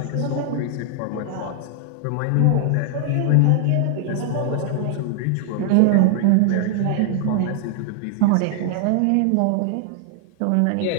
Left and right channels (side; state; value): both; different; correlation 0.00